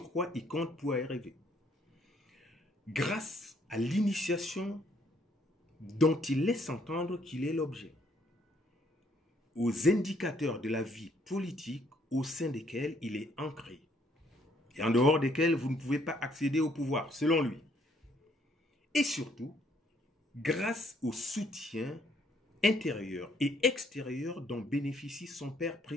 quoi il compte pour y arriver. Grâce à l'initiation dont il laisse entendre qu'il est l'objet, aux indicateurs de la vie politique au sein desquels il est ancré, et en dehors desquels vous ne pouvez pas accéder au pouvoir, selon lui. Et surtout, grâce au soutien intérieur et extérieur dont bénéficie son père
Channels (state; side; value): normal; both; correlation 0.67